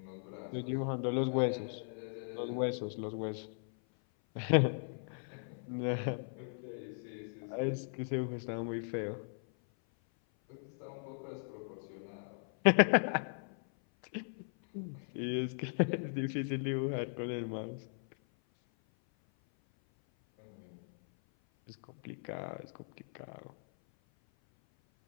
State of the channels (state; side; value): silent; right; 53 dB below the other